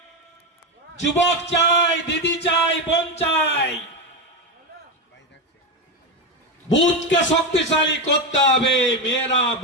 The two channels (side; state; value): both; normal; correlation 0.13